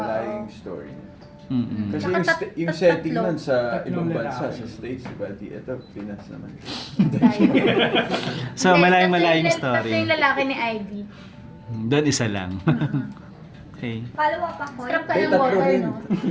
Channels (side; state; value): both; identical; correlation 1.00